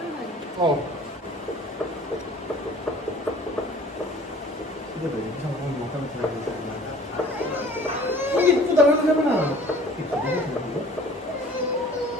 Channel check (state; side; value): normal; both; correlation 0.49